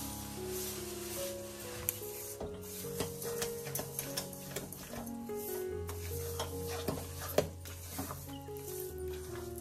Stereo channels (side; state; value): both; identical; correlation 1.00